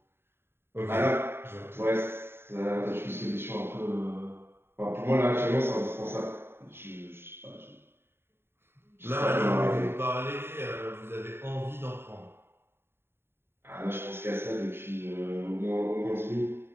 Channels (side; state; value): left; late; 0.11 ms